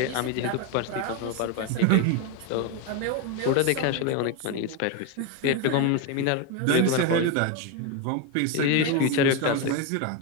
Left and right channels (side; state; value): both; different; correlation 0.02